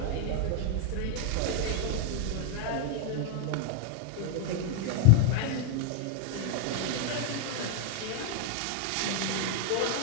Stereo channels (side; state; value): both; different; correlation 0.00